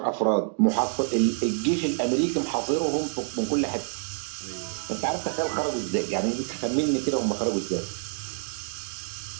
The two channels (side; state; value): left; silent; digital silence